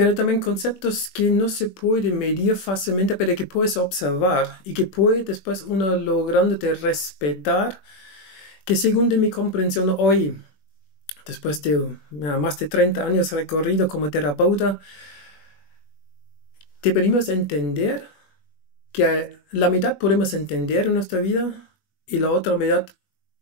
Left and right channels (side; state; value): right; late; 21 ms